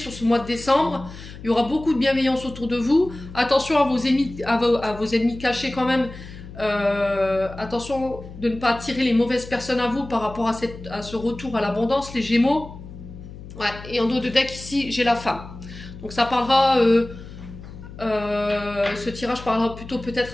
ce mois de décembre, il y aura beaucoup de bienveillance autour de vous, attention à vos ennemis, à vos ennemis cachés quand même, attention de ne pas attirer les mauvaises personnes à vous par rapport à ce retour à l'abondance, les Gémeaux. Ouais, et en dos de deck ici, j'ai la femme. Donc ça parlera, ce tirage parlera plutôt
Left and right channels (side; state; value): left; noise; hum, 14 dB below the sound